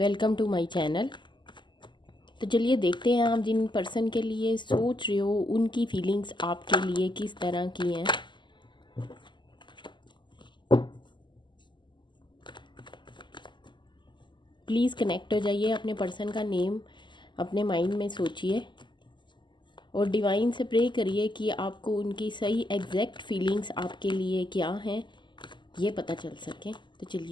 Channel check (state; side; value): late; right; 0.22 ms